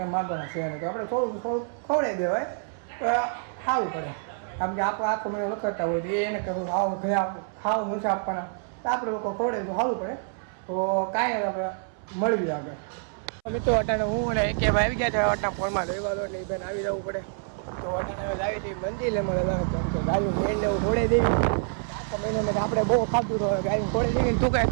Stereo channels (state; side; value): silent; left; 60 dB below the other